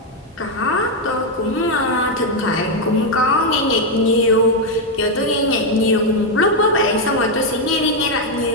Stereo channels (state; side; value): normal; both; correlation 0.02